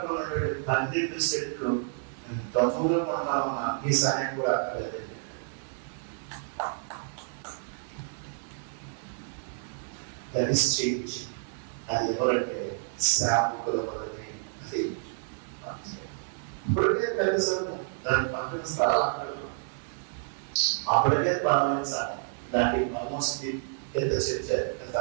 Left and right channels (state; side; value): silent; left; digital silence